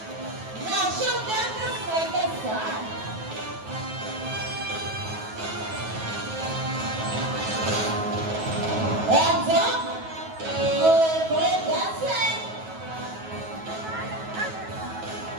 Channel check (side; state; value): left; late; 9.3 ms